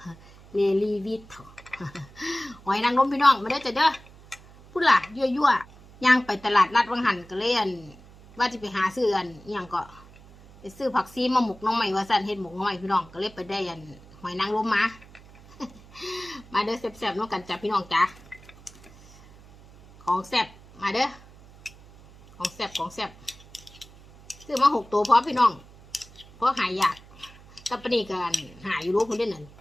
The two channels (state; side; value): noise; right; hum, 22 dB below the sound